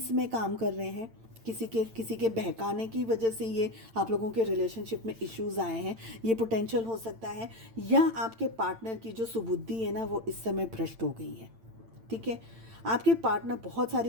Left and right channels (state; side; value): late; left; 8.9 ms